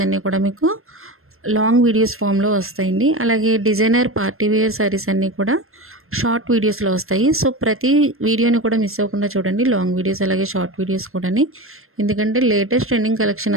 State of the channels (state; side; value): late; left; 0.62 ms